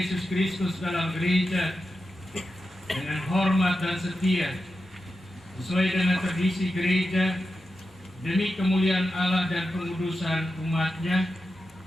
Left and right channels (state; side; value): normal; both; correlation 0.90